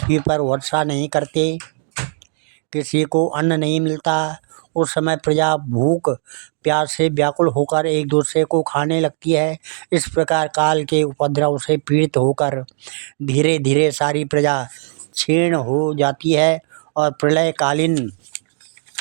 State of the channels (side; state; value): left; silent; digital silence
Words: पर वर्षा नहीं करते, किसी को अन्न नहीं मिलता। उस समय प्रजा भूख प्यास से व्याकुल होकर एक दूसरे को खाने लगती है। इस प्रकार काल के उपद्रव से पीड़ित होकर धीरे धीरे सारी प्रजा क्षीण हो जाती है और